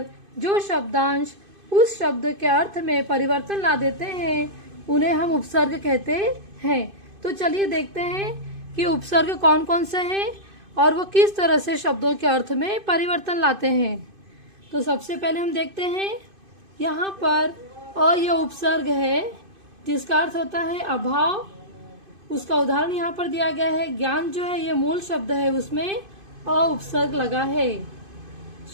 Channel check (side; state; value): left; late; 2.5 ms